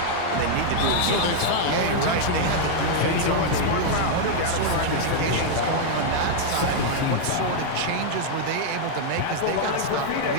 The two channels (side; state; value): both; different; correlation -0.01